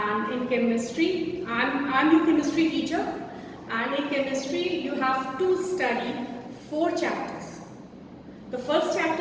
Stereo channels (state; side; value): identical; both; correlation 1.00